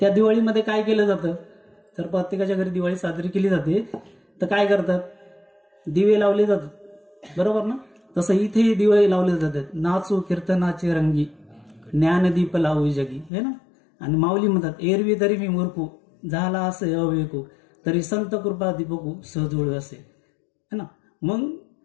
दिवाळीमध्ये काय केलं जातं तर प्रत्येकाच्या घरी दिवाळी साजरी केली जाते तर काय करतात दिवे लावले जातात बरोबर ना. तसं इथेही दिवे लावले जातात. नाचू कीर्तनाचे रंगी, ज्ञानदीप लावू जगी, हे ना. आणि माऊली म्हणतात, एरवी तरी मी मूर्खू, झाला असे अवेकू, तरी संत कृपा दीपकू सहजोळ असे, है ना. मग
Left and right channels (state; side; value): drops out; right; at 13.3 s